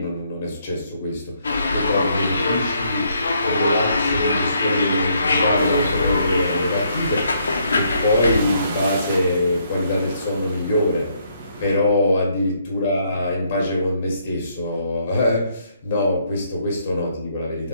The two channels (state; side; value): inverted; both; correlation -0.71